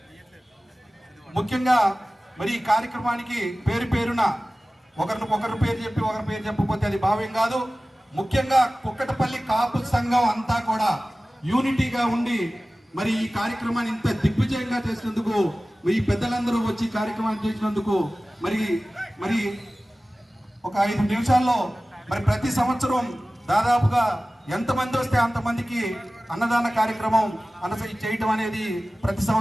ముఖ్యంగా మరి ఈ కార్యక్రమానికి పేరున ఒకరి పేరు చెప్పకపోతే అది భావ్యం కాదు. ముఖ్యంగా కుక్కటపల్లి కాపు సంఘం అంతా కూడా యూనిటీగా ఉండి మరి ఈ కార్యక్రమాన్ని ఇంత దిగ్విజయంగా చేసినందుకు, ఈ పెద్దలందరూ వచ్చి కార్యక్రమాన్ని చేసినందుకు మరి ఒక 5 నిమిషాల్లో మరి ప్రతి సంవత్సరం దాదాపుగా ఎంతమంది వస్తే అంతమందికి అన్నదాన కార్యక్రమం చేయటం అనేది ప్రతి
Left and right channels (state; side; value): normal; both; correlation 0.97